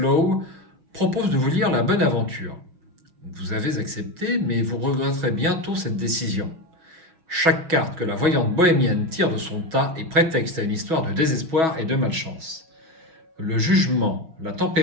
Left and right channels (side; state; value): left; late; 6.2 ms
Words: propose de vous lire La Bonne Aventure. Vous avez accepté, mais vous regretterez bientôt cette décision. Chaque carte que la voyante bohémienne tire de son tas est prétexte à une histoire de désespoir et de malchance. Le jugement, la